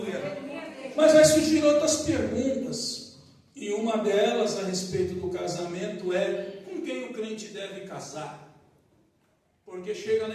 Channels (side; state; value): both; identical; correlation 1.00